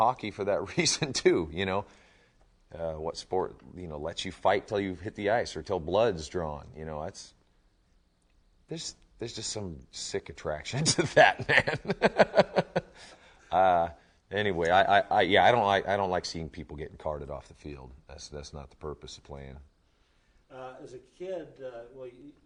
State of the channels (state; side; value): identical; both; correlation 1.00